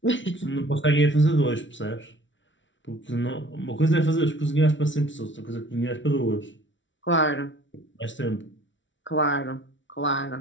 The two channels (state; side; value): late; right; 0.55 ms